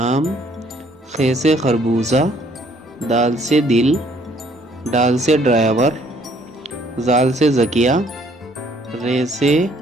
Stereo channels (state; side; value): normal; both; correlation 0.62